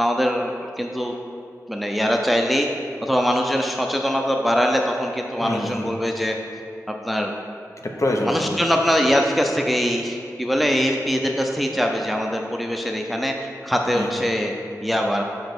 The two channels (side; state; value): both; normal; correlation 0.90